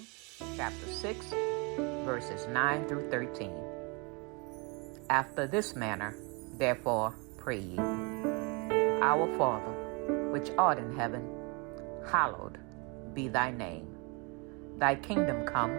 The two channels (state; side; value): quieter; left; 31.0 dB